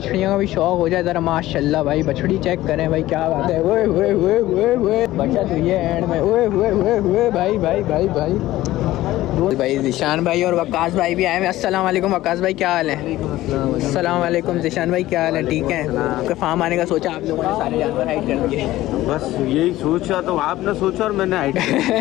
का भी शौक हो जाए ज़रा। माशाल्लाह भाई बछड़ी चेक करें भाई, क्या बात है। ओए ओए ओए ओए ओए बचत हुई है एंड में। ओए ओए ओए ओए भाई भाई भाई भाई भाई ज़िशान भाई और वकास भाई भी आए हैं। अस्सलाम वालेकुम वकास भाई, क्या हाल है? अस्सलाम वालेकुम ज़िशान भाई, क्या हाल है? ठीक है। आपका फार्म आने का सोचा आप लोगों ने, सारे जानवर हाइड कर दिए? बस यही सोचा, तो आपने सोचा और मैंने हाइड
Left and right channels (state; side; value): quieter; right; 16.0 dB